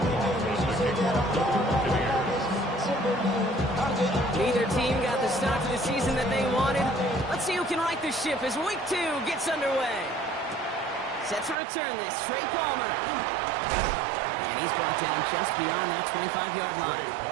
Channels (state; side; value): drops out; left; at 11.6 s